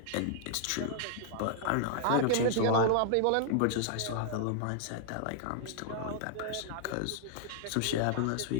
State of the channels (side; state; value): both; different; correlation -0.01